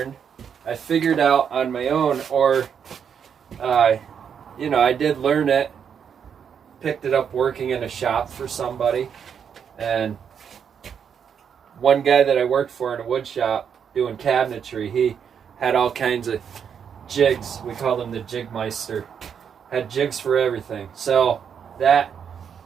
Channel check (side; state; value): left; quieter; 7.5 dB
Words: I figured out on my own, or you know, I did learn it, picked it up working in a shop for somebody. And one guy that I worked for in a wood shop doing cabinetry, he had all kinds of jigs. We called him the Jigmeister. Had jigs for everything. So that